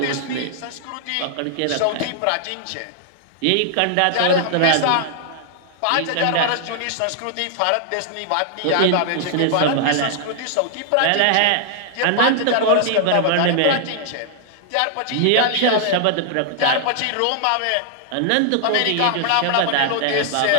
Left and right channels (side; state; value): both; different; correlation -0.01